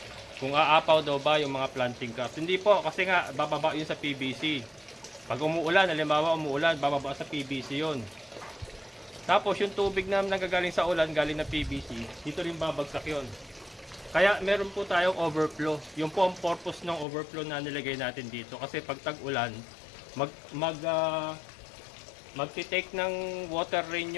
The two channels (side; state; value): right; drops out; at 17.1 s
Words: Kung aapaw daw ba yung mga planting cups. Hindi po, kasi nga bababa yun sa PVC. Pag umuulan, halimbawa umuulan, bababa sa PVC yun. Tapos yung tubig na nagagaling sa ulan, galing na PVC, dito rin babagsak yun. Kaya meron po tayong overflow. Yung po ang purpose ng overflow na nilagay natin dito. Kasi pag tag-ulan, magti-take ng water rain